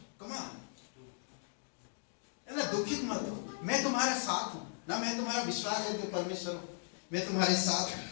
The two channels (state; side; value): silent; right; digital silence